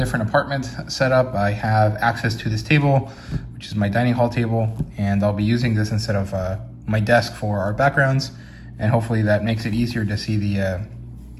apartment set up, I have access to this table, which is my dining hall table, and I'll be using this instead of my desk for our backgrounds, and hopefully that makes it easier to see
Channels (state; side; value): identical; both; correlation 1.00